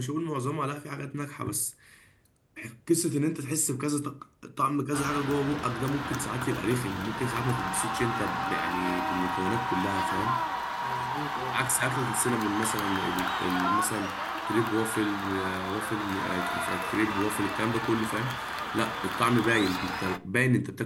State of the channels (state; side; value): identical; both; correlation 1.00